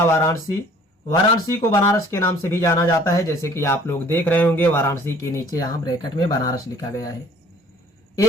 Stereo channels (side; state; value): both; normal; correlation 0.54